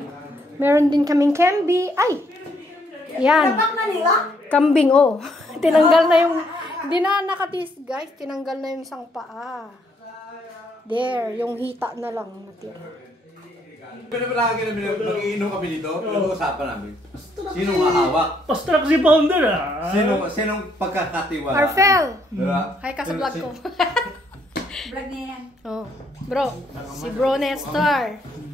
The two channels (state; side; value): normal; both; correlation 0.71